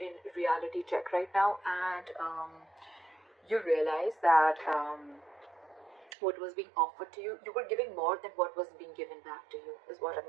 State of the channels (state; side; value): drops out; left; at 6.1 s